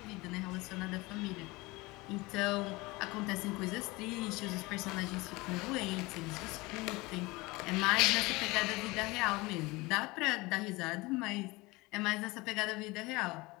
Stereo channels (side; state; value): right; quieter; 22.8 dB